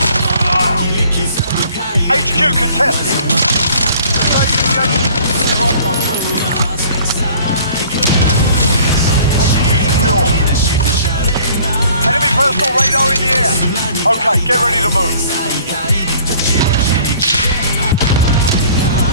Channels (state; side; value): inverted; both; correlation -0.52